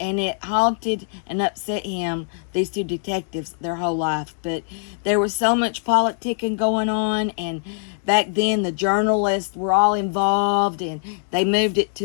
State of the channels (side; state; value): right; silent; digital silence